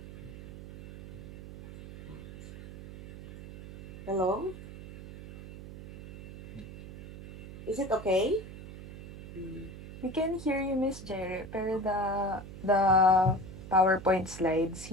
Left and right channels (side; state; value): right; noise; hum, 14 dB below the sound